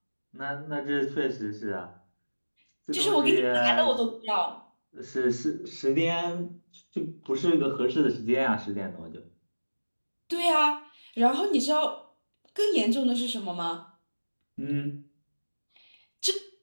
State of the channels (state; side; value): inverted; both; correlation -1.00